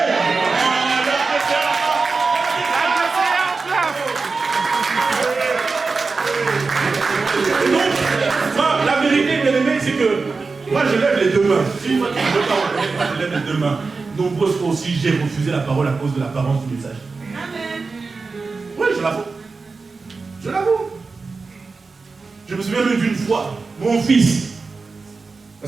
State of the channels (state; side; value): quieter; left; 4.2 dB